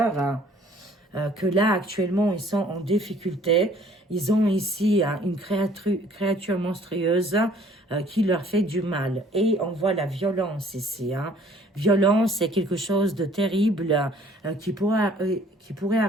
Hein, que là, actuellement, ils sont en difficulté. Ils ont ici une créature monstrueuse qui leur fait du mal. Et on voit la violence ici. Hein. Violence, c'est quelque chose de terrible qui pourrait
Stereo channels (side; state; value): both; normal; correlation 0.57